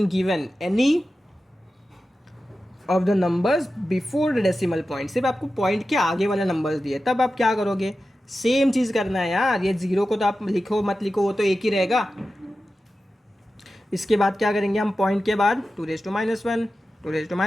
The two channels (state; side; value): normal; both; correlation 0.93